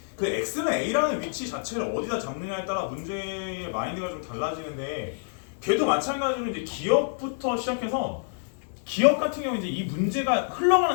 그 x는 a라는 위치 자체를 어디다 잡느냐에 따라 문제의 마인드가 좀 달라지는데 걔도 마찬가지로 이제 기억부터 시작해서 기억 같은 경우 이제 이 문제가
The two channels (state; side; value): silent; right; digital silence